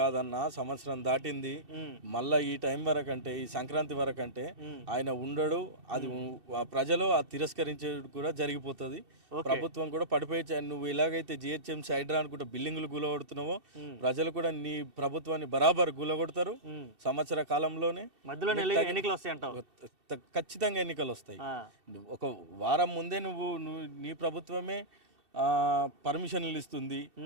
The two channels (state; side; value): late; left; 2.7 ms